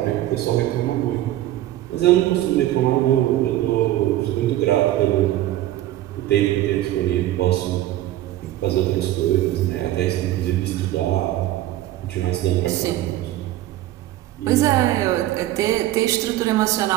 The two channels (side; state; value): left; quieter; 14.6 dB